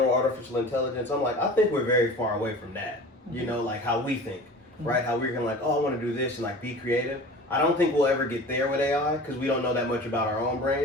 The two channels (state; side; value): normal; both; correlation 0.39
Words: artificial intelligence, I'm like, I think we're very far away from that. You know, like how we think, right? How we're gonna like, oh, I want to do this and like be creative. I don't think we'll ever get there with AI because we don't know that much about our own